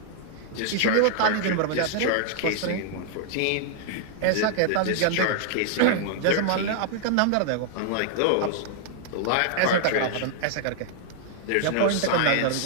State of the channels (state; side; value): different; both; correlation -0.01